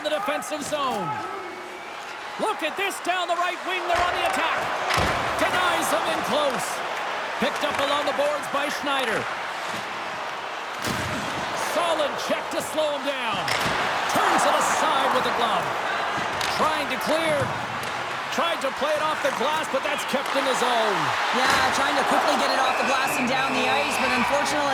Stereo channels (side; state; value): both; identical; correlation 1.00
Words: the defensive zone. Look at this down the right wing. They're on the attack. Denies him in close. Picked up along the boards by Schneider. Solid check to slow him down. Turns it aside with the glove. Trying to clear. Tried to play it off the glass, but that's kept in his zone. Yeah, trying to quickly get it off the glass and down the ice, but